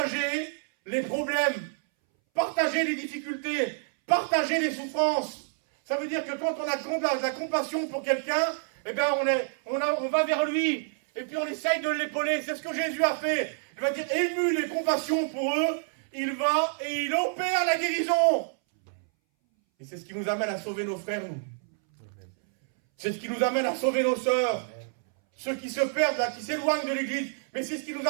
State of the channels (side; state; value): left; silent; 59 dB below the other